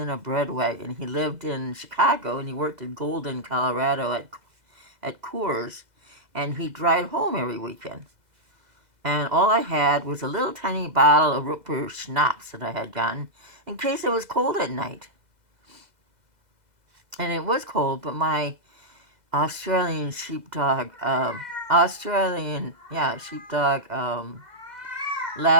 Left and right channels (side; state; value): left; late; 2.0 ms